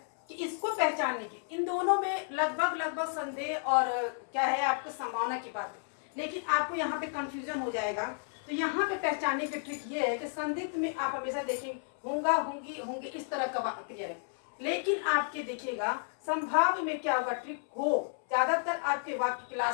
कि इसको पहचानने की इन दोनों में लगभग संदेह और क्या है आपके संभावना की बात है, लेकिन आपको यहाँ पे कंफ्यूजन हो जाएगा। तो यहाँ पे पहचानने की ट्रिक ये है कि संदिग्ध में आप हमेशा देखेंगे होगा, होंगी, होंगे, इस तरह का क्रिया है। लेकिन आपके देखिएगा संभाव्य में क्या होगा, ट्रिक हो, ज्यादातर आपके वाक्य के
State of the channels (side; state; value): right; silent; 56 dB below the other